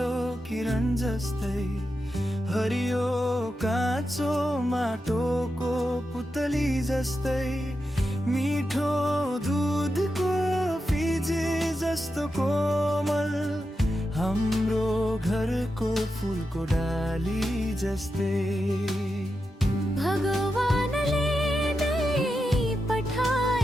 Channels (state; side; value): normal; both; correlation 0.88